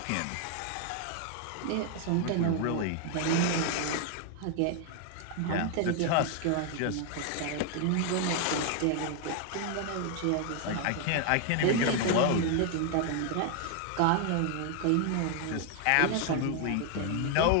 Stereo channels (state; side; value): different; both; correlation 0.00